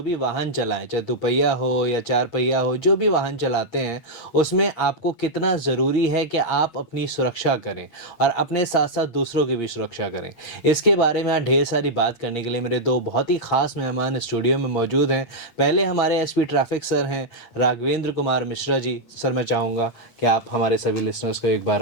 भी वाहन चलाएं, चाहे दुपहिया हो या चार पहिया हो, जो भी वाहन चलाते हैं उसमें आपको कितना ज़रूरी है कि आप अपनी सुरक्षा करें और अपने साथ साथ दूसरों की भी सुरक्षा करें। इसके बारे में आज ढेर सारी बात करने के लिए मेरे दो बहुत ही ख़ास मेहमान स्टूडियो में मौजूद हैं। पहले हमारे एसपी ट्रैफिक सर हैं राघवेंद्र कुमार मिश्रा जी। सर, मैं चाहूँगा कि आप हमारे सभी लिसनर्स को एक बार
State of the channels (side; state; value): right; late; 8.5 ms